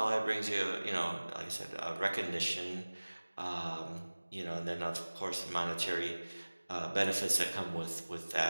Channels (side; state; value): both; inverted; correlation -1.00